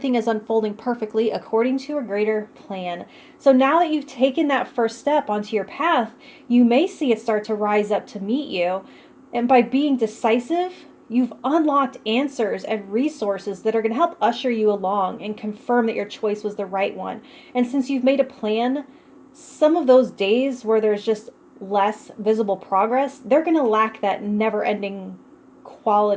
is unfolding perfectly according to a greater plan. So now that you've taken that first step onto your path, you may see it start to rise up to meet you. And by being decisive, you've unlocked answers and resources that are going to help usher you along and confirm that your choice was the right one. And since you've made a plan, some of those days where there's just less visible progress, they're going to lack that never-ending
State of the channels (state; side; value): identical; both; correlation 1.00